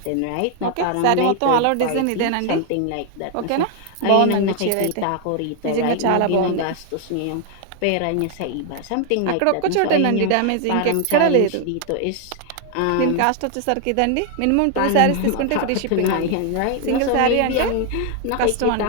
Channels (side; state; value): both; different; correlation 0.00